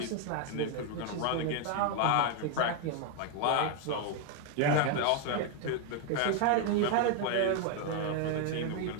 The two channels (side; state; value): both; different; correlation 0.01